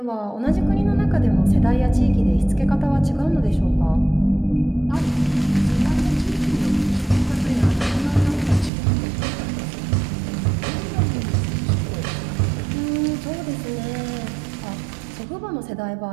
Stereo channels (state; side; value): drops out; left; at 8.7 s